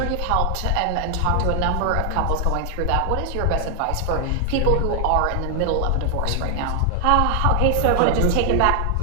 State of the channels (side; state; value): both; different; correlation 0.00